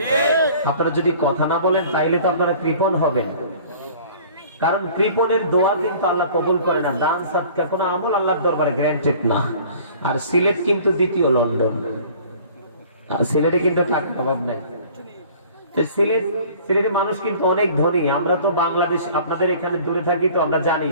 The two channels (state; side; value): inverted; both; correlation -0.49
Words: আপনারা যদি কথা না বলেন তাইলে তো আপনারা কৃপণ হবেন, কারণ কৃপণের দোয়া কিন্তু আল্লাহ কবুল করে না। দান সাদকা কোনো আমল আল্লাহর দরবারে গ্যারান্টেড না। আর সিলেট কিন্তু দ্বিতীয় লন্ডন, সিলেটে কিন্তু টাকার অভাব নাই। সিলেটের মানুষ কিন্তু অনেক ধনী। আমরা তো বাংলাদেশ, আপনাদের এখানে দূরে থাকি তো আমরা জানি,